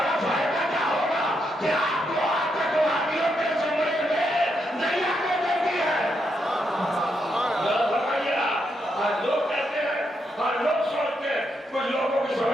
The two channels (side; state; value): both; normal; correlation 0.80